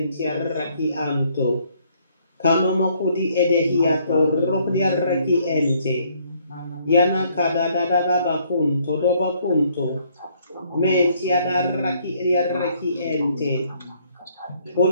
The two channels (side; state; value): both; inverted; correlation -0.66